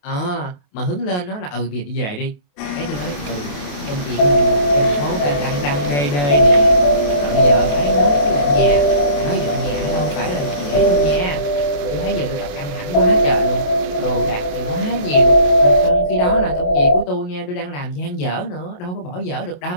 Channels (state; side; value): late; right; 28 ms